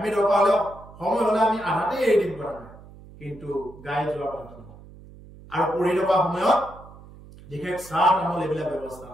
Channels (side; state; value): right; noise; hum, 20 dB below the sound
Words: দৰকাৰ হলে সময় হলে আমি আধাতে এৰি দিম কৰা নাই কিন্তু গাই যোৱাৰ কথা নহয় আৰু পঢ়ি থকা সময়ত বিশেষ চাহ তামোল এইবিলাক ব্যৱস্থা